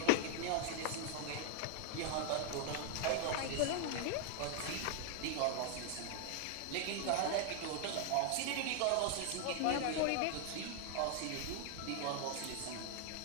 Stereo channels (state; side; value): different; both; correlation 0.00